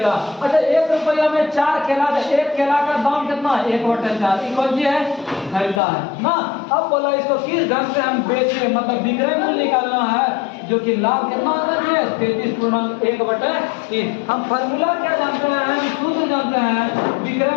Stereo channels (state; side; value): drops out; right; at 5.8 s